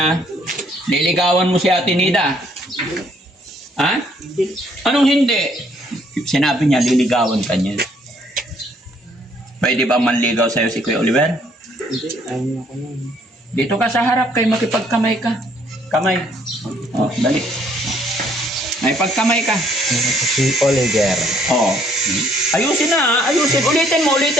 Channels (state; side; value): normal; both; correlation 0.65